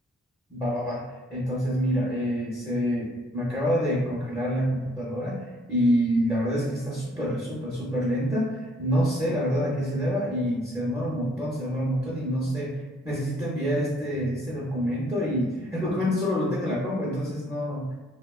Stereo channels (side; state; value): both; normal; correlation 0.63